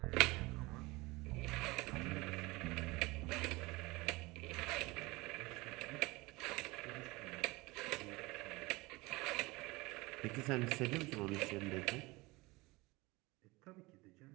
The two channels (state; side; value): quieter; left; 22.6 dB